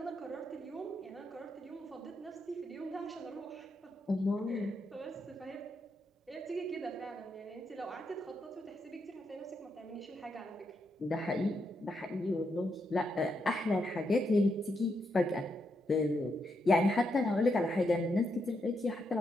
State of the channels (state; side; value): normal; both; correlation 0.81